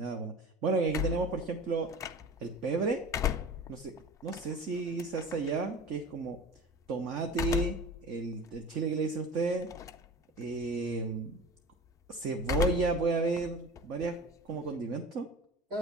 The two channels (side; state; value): both; normal; correlation 0.37